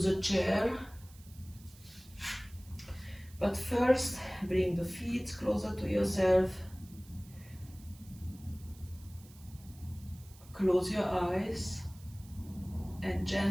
a chair. But first, bring the feet closer to yourself. Close your eyes and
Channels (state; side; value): noise; right; hiss, 24 dB below the sound